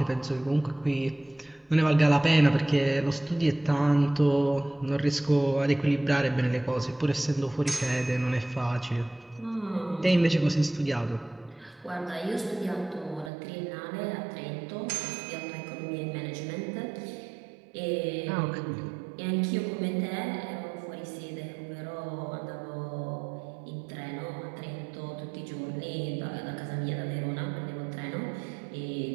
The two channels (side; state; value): left; drops out; at 13.3 s